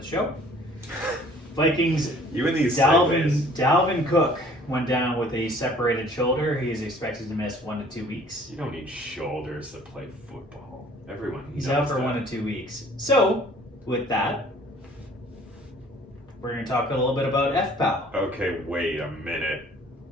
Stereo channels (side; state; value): both; normal; correlation 0.54